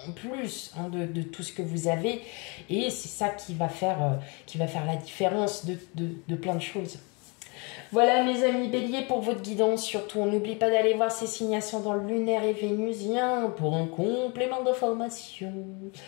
en plus de tout ce que vous avez. Et c'est ça qui va faire la différence de plein de choses. Voilà mes amis béliers pour votre guidance. Surtout, on n'oublie pas d'aller voir ces signations dans le lunaire et vénusien pour un complément d'information.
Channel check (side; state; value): right; quieter; 30.9 dB